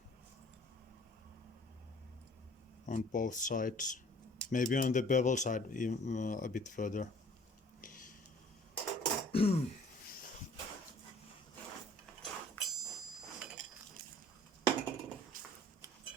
on both sides. Maybe on the bevel side a bit further.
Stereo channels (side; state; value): both; normal; correlation 0.52